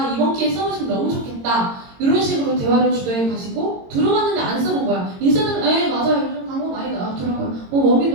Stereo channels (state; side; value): late; left; 22 ms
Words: 이번 기회에 써보시면 너무 좋겠다. 이런 식으로 대화를 주도해 가시고 들어봤는데 안 써본 거야. 인셀덤 맞아요. 요즘 광고 많이 나왔더라고요.